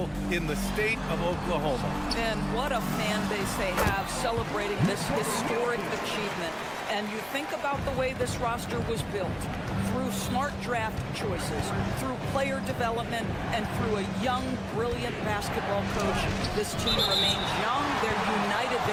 in the state of Oklahoma. And what a fan base they have celebrating this historic achievement. And you think about the way this roster was built, through smart draft choices, through player development, and through a young, brilliant basketball coach. This team remains young, they're united,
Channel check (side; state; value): both; identical; correlation 1.00